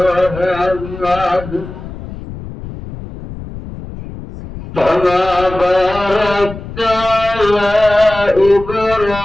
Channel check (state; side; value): noise; left; rumble, 12 dB below the sound